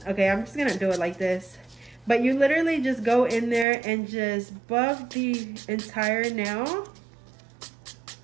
okay, I'm just gonna do it like this. But you literally just go in there and just buff the entire nail.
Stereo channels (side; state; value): left; drops out; at 3.7 s